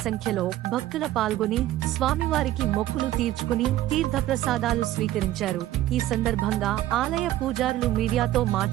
సంఖ్యలో భక్తుల పాల్గొని స్వామివారికి మొక్కులు తీర్చుకుని తీర్థప్రసాదాలు స్వీకరించారు. ఈ సందర్భంగా ఆలయ పూజారులు మీడియాతో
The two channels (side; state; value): left; quieter; 14.3 dB